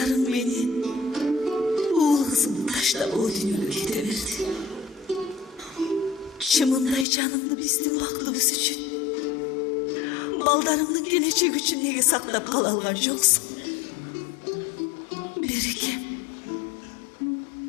менен уул кызымды таштап о дүйнөгө кете берди. Чымындай жанымды биздин бактыбыз үчүн, балдарымдын келечеги үчүн неге сактап кала алган жоксуң? Берекем,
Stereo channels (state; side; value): drops out; right; at 7.1 s